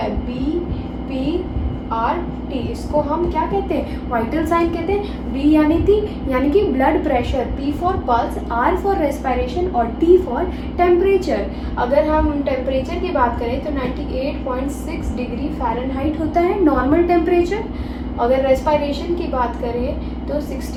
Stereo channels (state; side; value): identical; both; correlation 1.00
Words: BPRT, इसको हम क्या कहते हैं, वाइटल साइन कहते हैं. B यानी कि blood pressure, P for pulse, R for respiration और T फॉर टेम्परेचर. अगर हम टेम्परेचर की बात करें तो 98.6 डिग्री फ़ारेनहाइट होता है नॉर्मल टेम्परेचर. अगर रेस्पिरेशन की बात करें तो